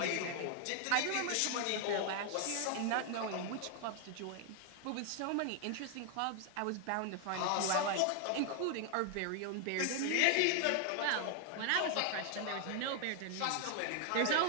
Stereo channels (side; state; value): both; different; correlation 0.00